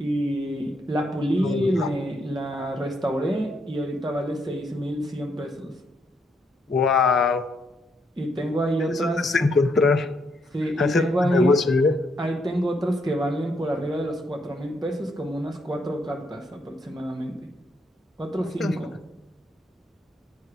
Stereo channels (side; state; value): both; normal; correlation 0.75